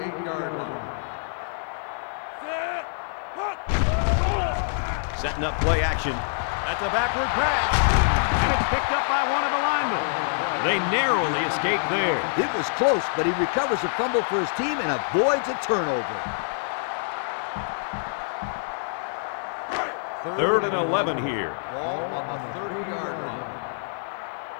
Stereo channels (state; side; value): silent; right; digital silence